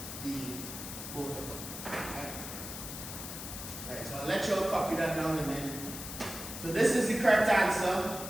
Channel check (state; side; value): noise; left; hiss, 8 dB below the sound